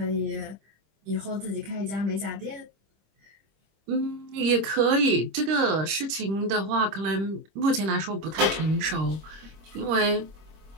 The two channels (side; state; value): left; late; 25 ms